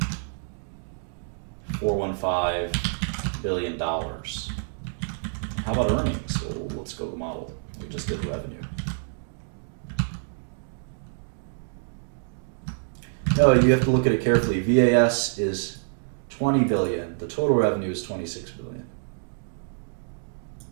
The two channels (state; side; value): silent; left; digital silence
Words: billion. How about earnings? Well, let's go to the model. We just did revenue. No, you have to look at it carefully. VAS is 20 billion. The total revenue is 26 billion.